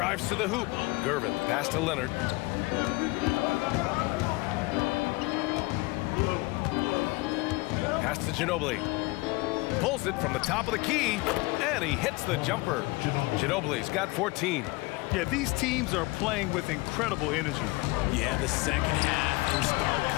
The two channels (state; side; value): quieter; right; 23.2 dB